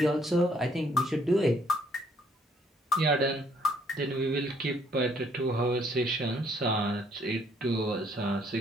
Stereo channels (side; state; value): both; normal; correlation 0.66